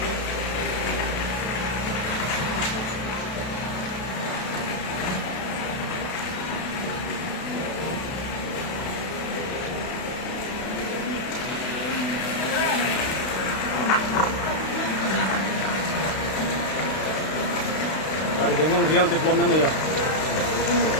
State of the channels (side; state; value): right; late; 32 ms